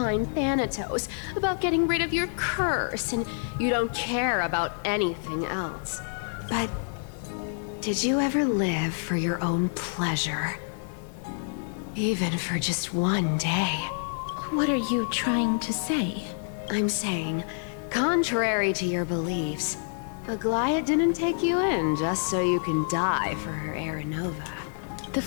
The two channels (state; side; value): silent; right; digital silence